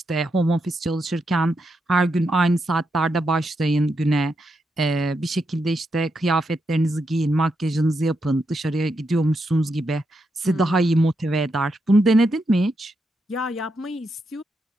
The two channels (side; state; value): both; normal; correlation 0.83